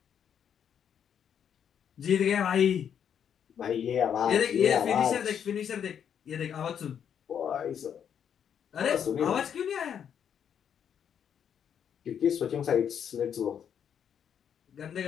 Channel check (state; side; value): quieter; right; 8.4 dB